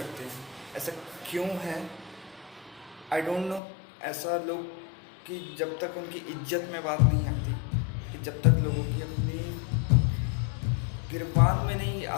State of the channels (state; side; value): drops out; right; at 3.6 s